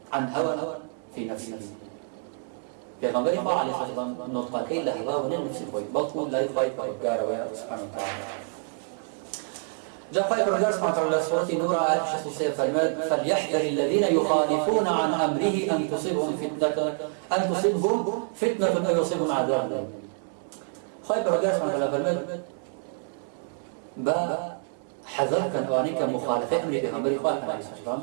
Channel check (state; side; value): silent; left; 60 dB below the other